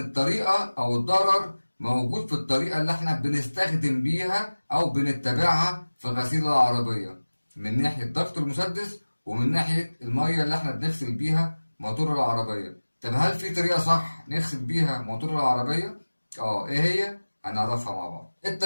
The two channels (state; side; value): inverted; both; correlation -1.00